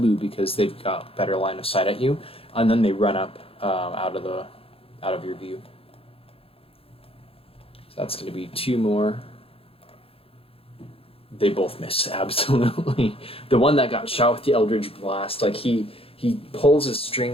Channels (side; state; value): right; late; 0.27 ms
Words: because they've got better line of sight at you, and then they run up out of your view. So that's going to be 2 more. They both miss, absolutely. The one that got shot with the Eldritch Blast, like he pulls his